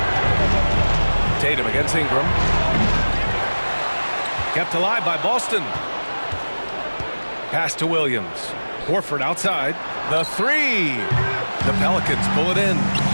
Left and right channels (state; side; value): inverted; both; correlation -1.00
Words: Tatum against Ingram. Kept alive by Boston. Pass to Williams. Horford outside. The three. The Pelicans pull it in.